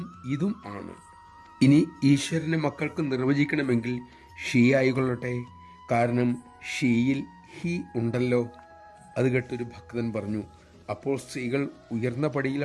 ഇതും ആണ്. ഇനി ഈശ്വരനെ മക്കൾക്ക് നിർവചിക്കണമെങ്കിൽ ഷീ ആയിക്കൊള്ളട്ടെ, കാരണം ഷീയിൽ ഹി ഉണ്ടല്ലോ. അത് കേട്ടൊരു ഭക്തൻ പറഞ്ഞു, അപ്പോൾ സ്ത്രീകൾ ഉയർന്ന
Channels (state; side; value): identical; both; correlation 1.00